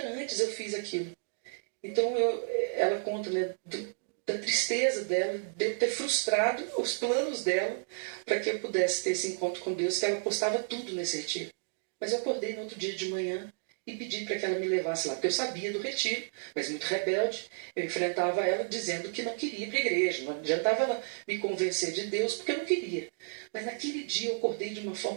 antes eu fiz aquilo. Então ela conta, né, da tristeza dela, de eu ter frustrado os planos dela para que eu pudesse ter esse encontro com Deus, que ela postava tudo nesse retiro. Mas eu acordei no outro dia de manhã e pedi para que ela me levasse lá, porque eu sabia do retiro, mas muito rebelde, eu enfrentava ela dizendo que não queria ir para a igreja, não adiantava ela me convencer de Deus, porque eu não queria. Mas naquele dia eu acordei de uma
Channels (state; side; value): silent; left; digital silence